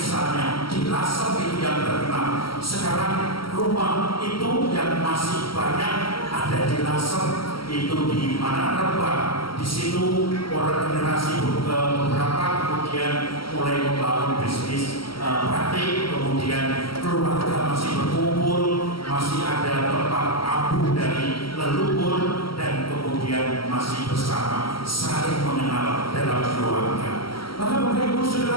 di Lasem itu yang terkenal. Sekarang rumah itu yang masih banyak ada di Lasem itu di mana Rembang. Di situ orang generasi beberapa kemudian mulai membangun bisnis batik, kemudian keluarga masih berkumpul, masih ada tempat abu dari leluhur, dan kemudian masih bersama saling mengenal dalam keluarga. Maka Bapak Ibu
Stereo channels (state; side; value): late; right; 0.74 ms